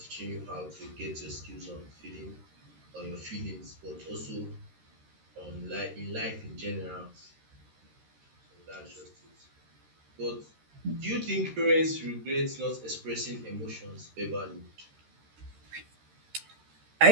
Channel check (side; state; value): left; late; 13 ms